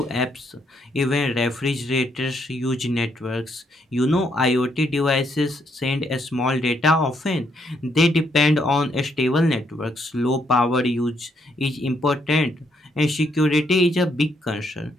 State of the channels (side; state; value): both; normal; correlation 0.74